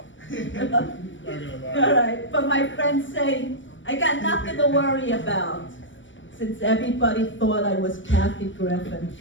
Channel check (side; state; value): right; late; 0.56 ms